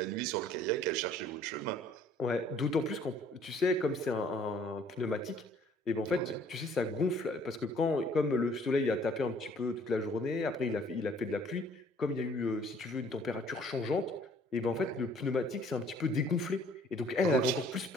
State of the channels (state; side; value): normal; both; correlation 0.58